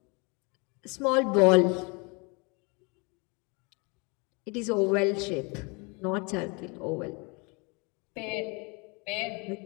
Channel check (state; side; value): quieter; right; 30.4 dB